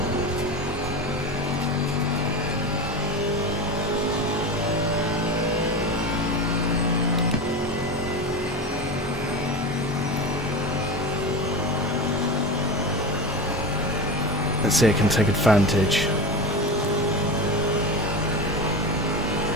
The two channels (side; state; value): both; normal; correlation 0.25